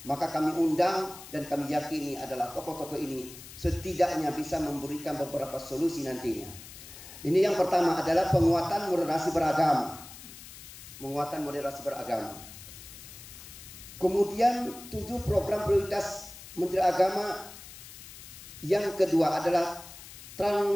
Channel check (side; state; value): left; noise; hiss, 15 dB below the sound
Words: maka kami undang dan kami yakini adalah tokoh-tokoh ini setidaknya bisa memberikan beberapa solusi nantinya. Ini yang pertama adalah penguatan moderasi beragama. Penguatan moderasi beragama. Kemudian 7 program prioritas Menteri Agama. Yang kedua adalah